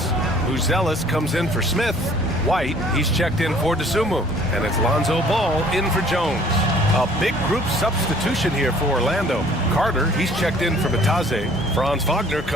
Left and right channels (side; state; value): both; normal; correlation 0.55